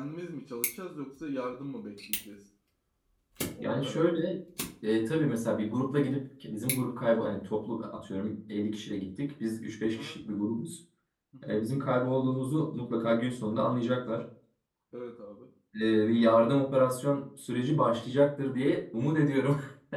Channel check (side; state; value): both; identical; correlation 1.00